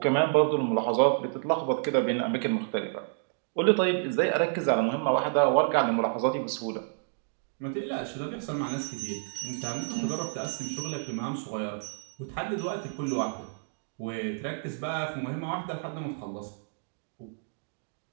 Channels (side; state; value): left; silent; digital silence